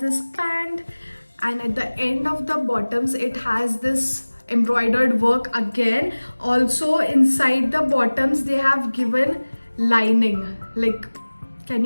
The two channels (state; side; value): inverted; both; correlation -1.00